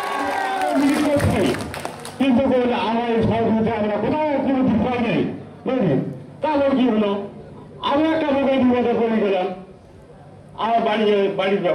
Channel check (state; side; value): identical; both; correlation 1.00